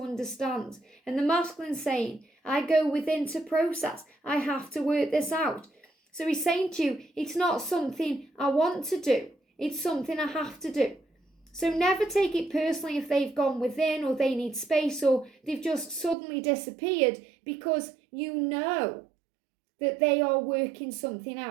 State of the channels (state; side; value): drops out; left; at 16.2 s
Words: understand. And the masculine saying, I go within to process. I have to work this out. So he's saying to you, it's not something I want to do. It's something I have to do. So never take it personally if they've gone within or they need space or they've just suddenly disappeared, because you know that they are working something